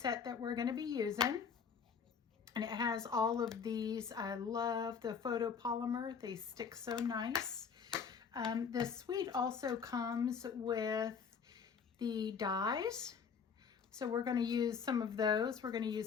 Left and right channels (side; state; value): right; quieter; 6.3 dB